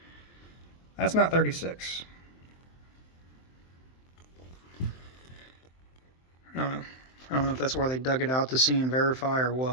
That's not 36. I don't know. I don't know if that's where they dug it out to see and verify or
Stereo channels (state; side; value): late; right; 23 ms